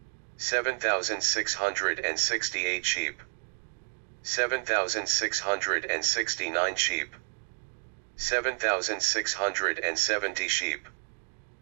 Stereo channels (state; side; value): silent; left; digital silence